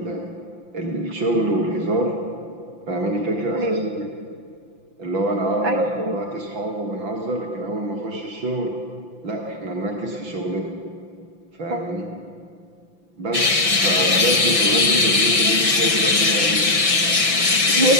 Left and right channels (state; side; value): late; left; 5.9 ms